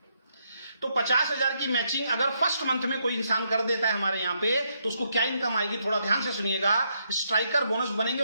तो 50 हजार की मैचिंग अगर फर्स्ट मंथ में कोई इंसान कर देता है हमारे यहां पे, तो उसको क्या इनकम आएगी, थोड़ा ध्यान से सुनिएगा। स्ट्राइकर बोनस बनेंगे,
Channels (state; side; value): inverted; both; correlation -0.77